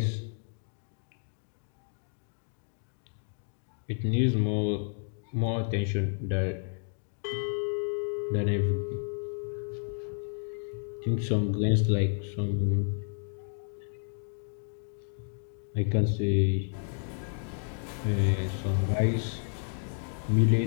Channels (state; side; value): silent; right; 57 dB below the other